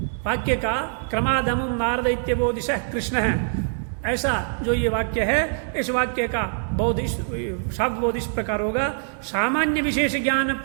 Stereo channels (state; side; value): silent; left; digital silence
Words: वाक्य का क्रमादमुम नारद इत्यबोधिश कृष्ण है, ऐसा जो ये वाक्य है, इस वाक्य का बोध शब्द बोध इस प्रकार होगा। सामान्य विशेष ज्ञान